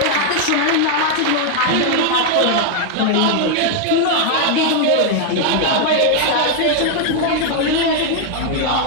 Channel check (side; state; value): both; different; correlation 0.00